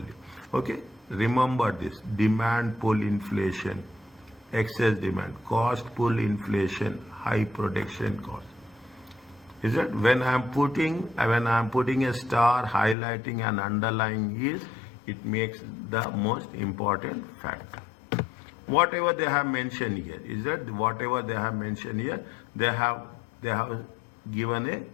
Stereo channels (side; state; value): right; drops out; at 13.0 s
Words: Okay? Remember this. Demand pull inflation, excess demand, cost pull inflation, high production cost. Is that when I am putting a star highlighting and underlying is, it makes the most important factor. Whatever they have mentioned here, they have given a